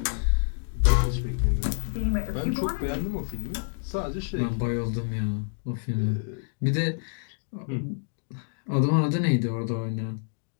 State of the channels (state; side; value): silent; right; digital silence